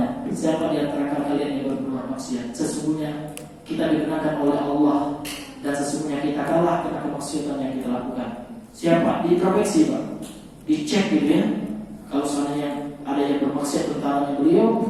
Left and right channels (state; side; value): identical; both; correlation 1.00